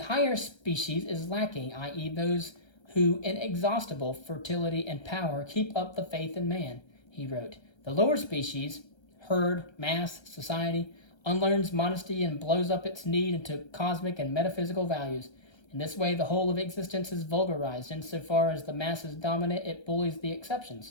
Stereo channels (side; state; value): right; late; 1.3 ms